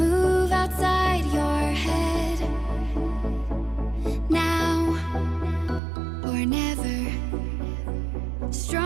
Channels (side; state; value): left; drops out; at 5.8 s